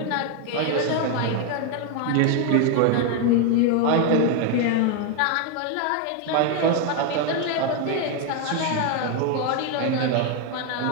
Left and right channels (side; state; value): both; different; correlation 0.01